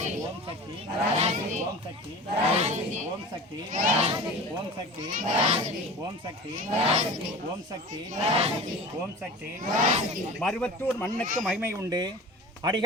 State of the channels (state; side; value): normal; both; correlation 0.36